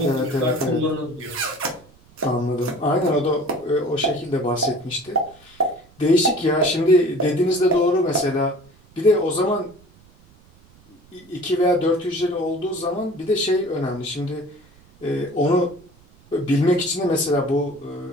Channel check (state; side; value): noise; right; rumble, 28 dB below the sound